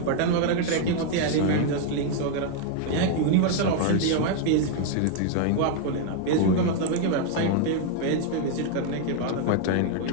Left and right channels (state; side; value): different; both; correlation 0.00